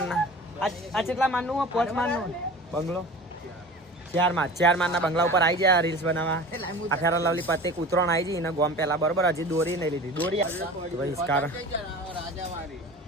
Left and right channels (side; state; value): both; normal; correlation 0.38